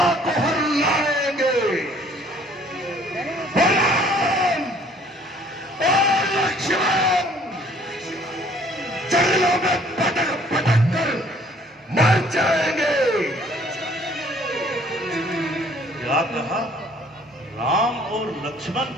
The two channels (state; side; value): normal; both; correlation 0.58